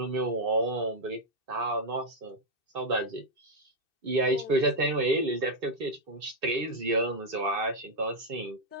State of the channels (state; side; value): late; left; 2.6 ms